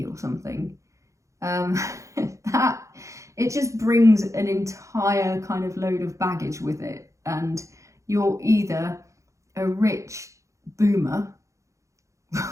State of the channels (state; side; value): late; left; 0.15 ms